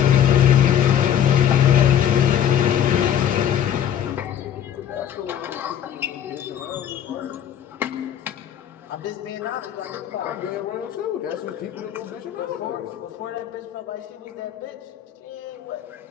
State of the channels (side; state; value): right; quieter; 9.8 dB